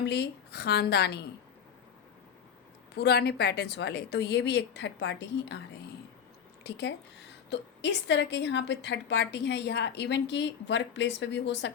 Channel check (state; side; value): quieter; right; 7.7 dB